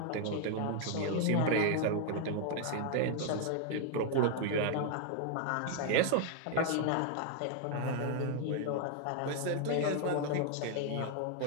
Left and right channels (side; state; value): both; different; correlation 0.00